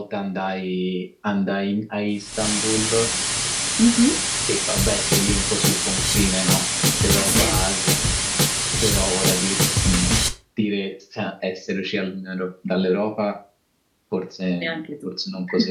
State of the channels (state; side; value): identical; both; correlation 1.00